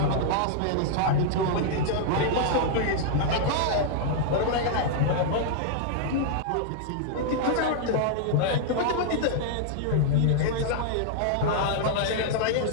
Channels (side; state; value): both; different; correlation -0.01